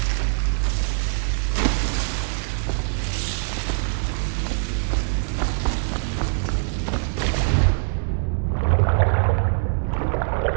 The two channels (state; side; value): silent; left; digital silence